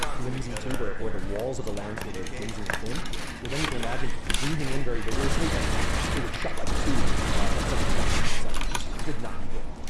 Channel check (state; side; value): identical; both; correlation 1.00